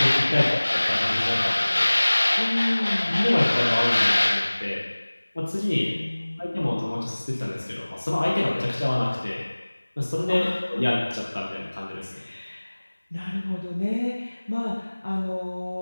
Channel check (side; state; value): both; inverted; correlation -1.00